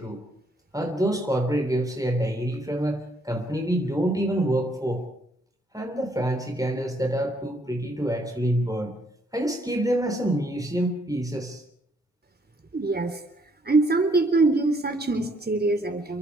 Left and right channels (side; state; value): both; normal; correlation 0.69